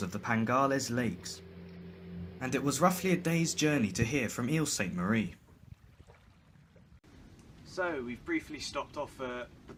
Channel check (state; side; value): identical; both; correlation 1.00